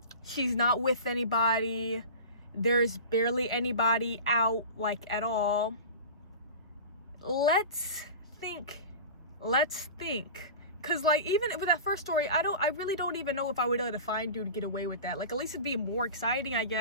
She's not with anybody. There's barely anybody out, like, at all. Let's think. Cause like, even with that first story, I really don't even know if I would let a fine dude get away with that. Like, at least it'd be more exciting, I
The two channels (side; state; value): both; inverted; correlation -0.33